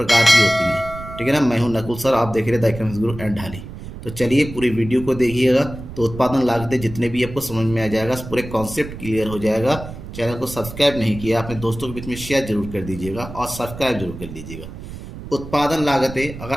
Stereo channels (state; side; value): noise; right; rumble, 12 dB below the sound